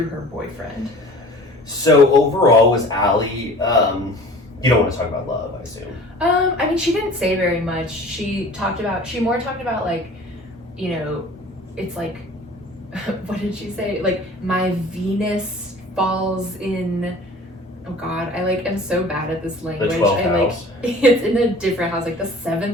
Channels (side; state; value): both; normal; correlation 0.45